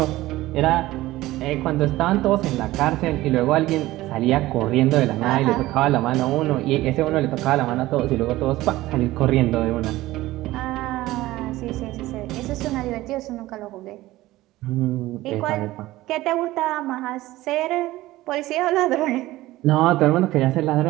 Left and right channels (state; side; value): quieter; left; 17.1 dB